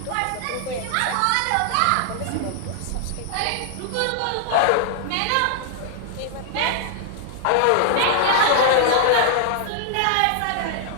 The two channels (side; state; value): both; different; correlation -0.01